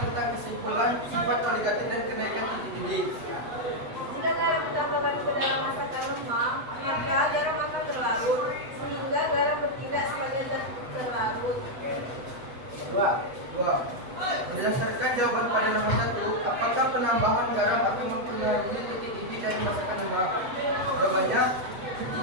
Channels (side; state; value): left; late; 8.0 ms